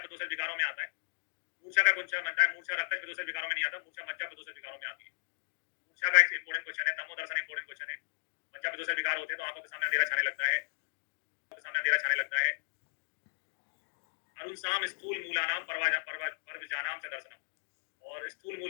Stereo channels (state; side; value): silent; right; digital silence